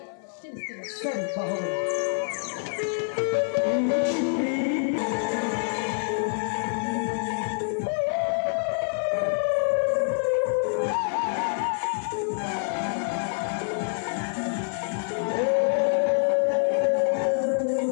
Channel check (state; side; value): silent; right; 57 dB below the other